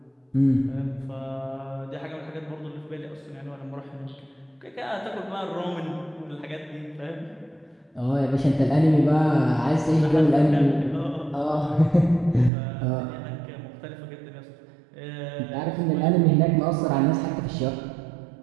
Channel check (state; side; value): drops out; left; at 12.5 s